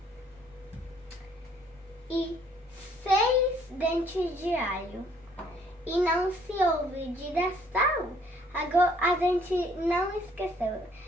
e 6 dentes de alho. E não se olvide da sal. Agora a gente não esqueceu.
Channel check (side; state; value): both; normal; correlation 0.62